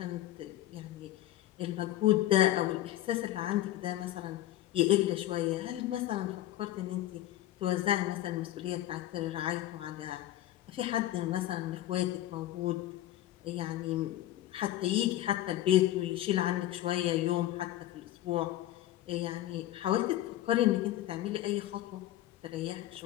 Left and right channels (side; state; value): right; quieter; 14.1 dB